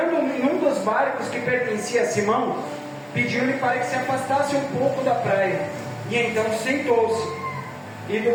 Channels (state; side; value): identical; both; correlation 1.00